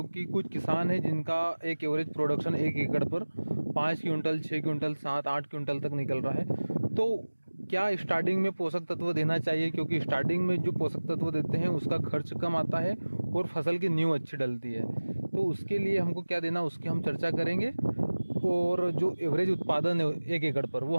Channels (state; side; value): inverted; both; correlation -1.00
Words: कुछ किसान हैं जिनका एक एवरेज प्रोडक्शन 1 एकड़ पर 5 क्विंटल 6 क्विंटल 7-8 क्विंटल तक निकल रहा है। तो क्या स्टार्टिंग में पोषक तत्व देना चाहिए, क्योंकि स्टार्टिंग में जो पोषक तत्व देते हैं उसका खर्च कम आता है और फसल की नींव अच्छी डलती है। तो उसके लिए हमको क्या देना उसकी हम चर्चा करेंगे। और जो एवरेज उत्पादन है 1 एकड़ पर वो